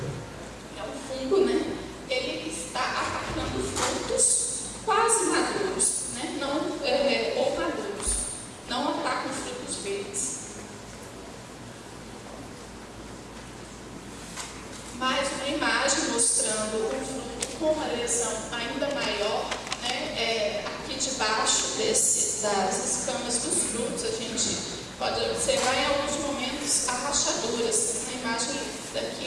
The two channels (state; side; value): identical; both; correlation 1.00